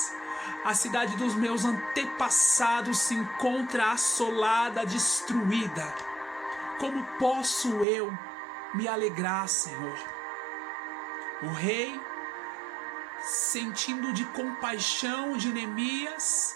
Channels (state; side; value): drops out; left; at 7.9 s